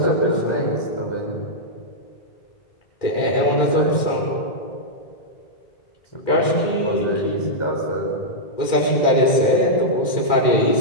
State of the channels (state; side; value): late; right; 2.1 ms